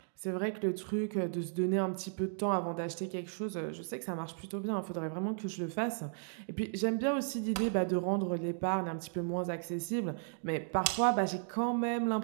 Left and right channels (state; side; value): silent; left; digital silence